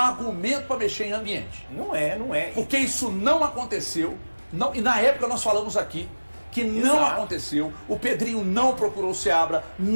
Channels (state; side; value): inverted; both; correlation -1.00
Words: para mexer em ambiente. Não é. Porque isso não aconteceu. Não, e na época nós falamos aqui que não Exato. aconteceu. O Pedrinho não procurou o Seabra,